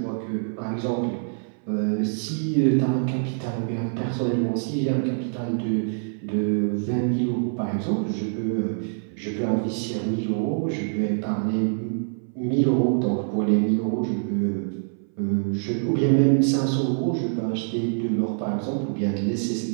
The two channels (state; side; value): silent; left; 59 dB below the other